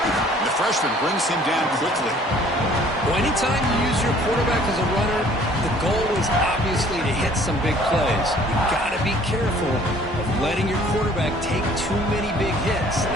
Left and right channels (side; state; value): both; normal; correlation 0.55